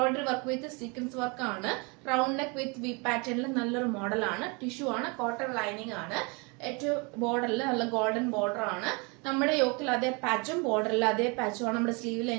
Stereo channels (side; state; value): left; quieter; 30.3 dB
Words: work with sequence work ആണ്, റൗണ്ട് നെക്ക് വിത്ത് വി പാറ്റേണിൽ നല്ലൊരു മോഡലാണ്. ടിഷ്യൂ ആണ്, കോട്ടൺ ലൈനിങ് ആണ്. ഏറ്റവും ബോർഡറിൽ നല്ല ഗോൾഡൻ ബോർഡർ ആണ്. നമ്മുടെ യോക്കിൽ അതേ പാച്ചും ബോർഡറിൽ അതേ പാച്ചും ആണ് നമ്മുടെ സ്ലീവിൽ